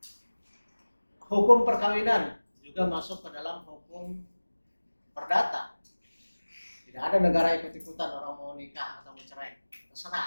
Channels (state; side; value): inverted; both; correlation -1.00